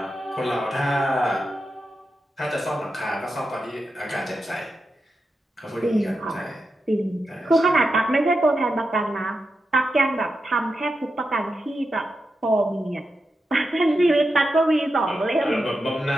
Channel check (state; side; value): normal; both; correlation 0.88